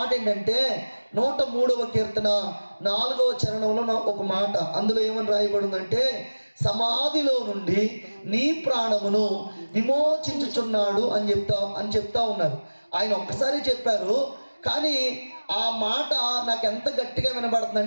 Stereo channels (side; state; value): both; inverted; correlation -1.00